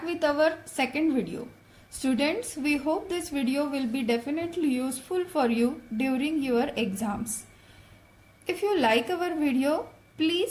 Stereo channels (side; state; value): both; identical; correlation 1.00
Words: with our second video. Students, we hope this video will be definitely useful for you during your exams. If you like our video,